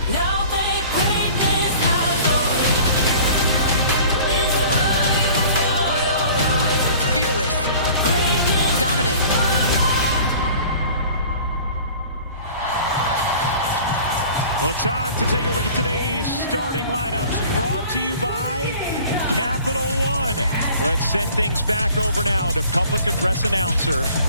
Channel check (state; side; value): inverted; both; correlation -0.46